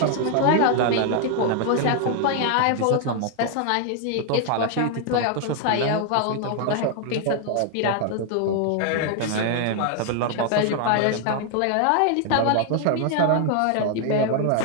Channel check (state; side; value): different; both; correlation 0.00